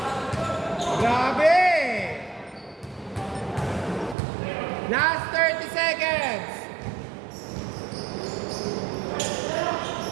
Grabe! Last 30 seconds.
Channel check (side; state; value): left; drops out; at 4.2 s